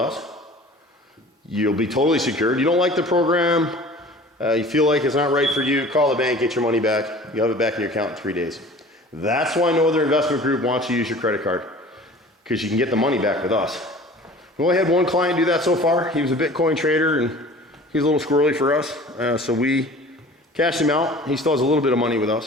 You'll be totally secured. You don't like the program, you feel like it's not right for you, call the bank, get your money back. You'll have it back in your account in 3 days. That's why no other investment group wants you to use your credit card, because you can get the money back with us. We only had one client do that so far. He was a Bitcoin trader and he's a little squirrely for us, so we cashed him out. He still has a little bit of money with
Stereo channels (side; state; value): both; normal; correlation 0.44